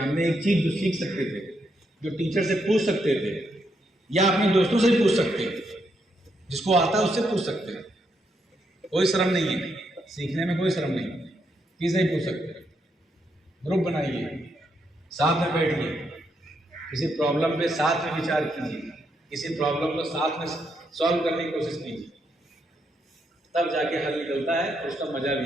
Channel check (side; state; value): both; normal; correlation 0.79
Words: एक चीज़ जो सीख सकते थे, जो टीचर से पूछ सकते थे या अपने दोस्तों से भी पूछ सकते हैं, जिसको आता है उससे पूछ सकते हैं। कोई शर्म नहीं है, सीखने में कोई शर्म नहीं है, किसी से भी पूछ सकते हैं। ग्रुप बनाइए, साथ में बैठिए, किसी प्रॉब्लम पे साथ में विचार कीजिए, किसी प्रॉब्लम को साथ में सॉल्व करने की कोशिश कीजिए, तब जाके हल निकलता है और उसका मजा